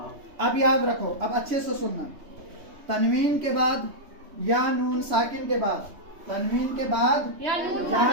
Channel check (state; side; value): late; left; 3.2 ms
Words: अब याद रखो, अब अच्छे से सुनना। तनवीन के बाद या नून साकिन के बाद, तनवीन के बाद या